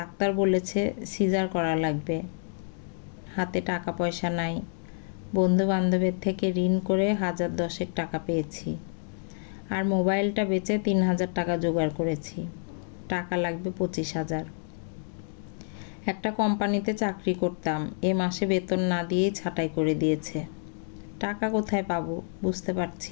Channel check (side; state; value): right; silent; digital silence